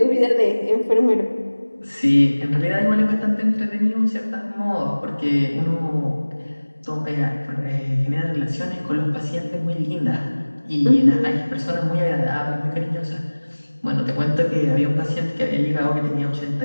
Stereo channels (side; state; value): both; inverted; correlation -1.00